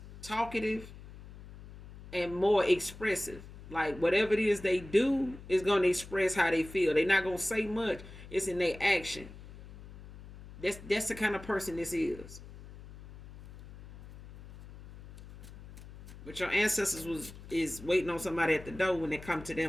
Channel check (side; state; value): left; noise; hum, 16 dB below the sound